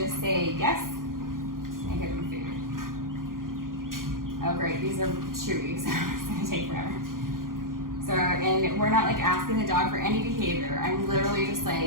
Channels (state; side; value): late; left; 0.91 ms